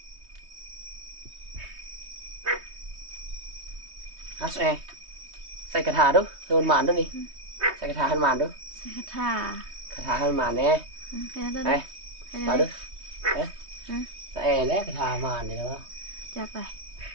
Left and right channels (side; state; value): left; late; 3.2 ms